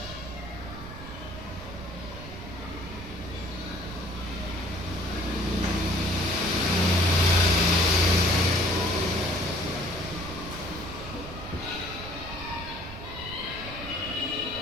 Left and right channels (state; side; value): noise; right; rumble, 12 dB below the sound